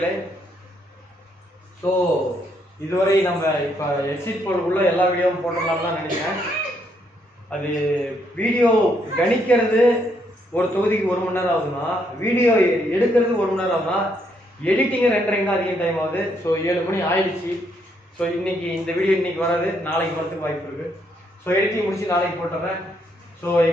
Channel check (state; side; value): normal; both; correlation 0.73